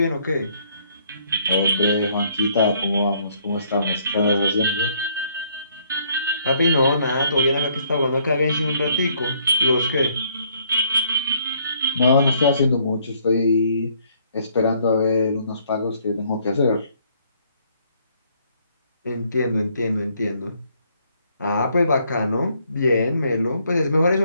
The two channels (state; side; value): inverted; both; correlation -0.67